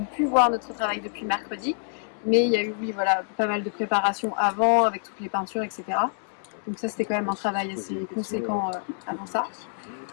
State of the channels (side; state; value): right; silent; digital silence